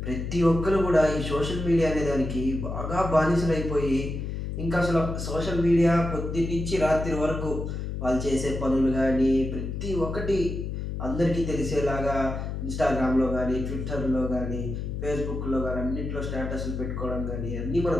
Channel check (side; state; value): left; noise; hum, 4 dB below the sound